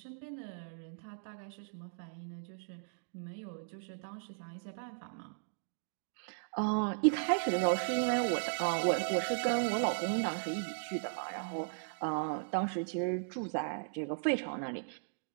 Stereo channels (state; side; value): silent; left; digital silence